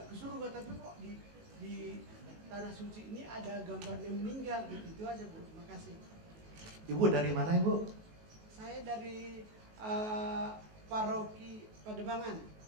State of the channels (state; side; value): late; left; 19 ms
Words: ke surga, tapi kok di tanah suci ini ada gambarnya meninggal gitu. Itu aja Bu. Terima kasih. Ibu dari mana Ibu? Saya dari Paroki Pademangan.